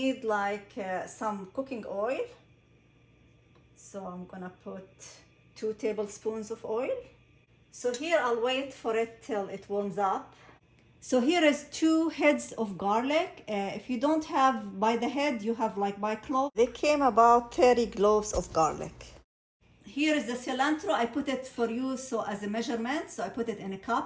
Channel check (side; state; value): both; identical; correlation 1.00